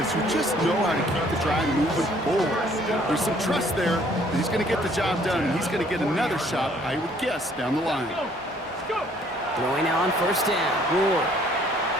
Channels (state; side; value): normal; both; correlation 0.61